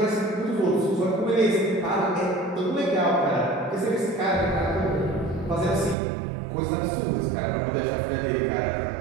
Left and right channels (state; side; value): drops out; left; at 6.0 s